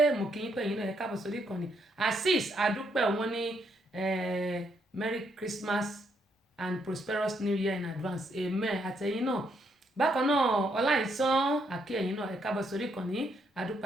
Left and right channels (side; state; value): both; normal; correlation 0.75